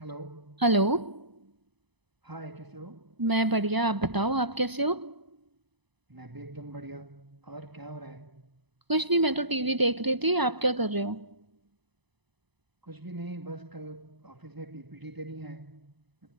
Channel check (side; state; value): left; late; 1.0 ms